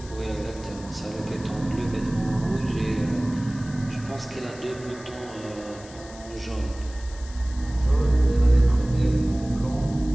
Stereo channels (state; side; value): noise; left; hiss, 20 dB below the sound